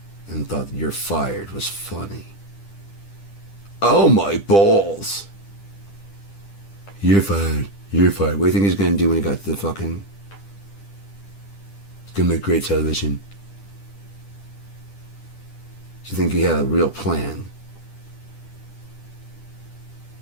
and thought that "you're fired" was funny. Oh my balls! You're fired. You're fired. What do you think he's gonna do when he got to the fucking... He's gonna make great television. Do you think he had a real plan?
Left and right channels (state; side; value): late; right; 10 ms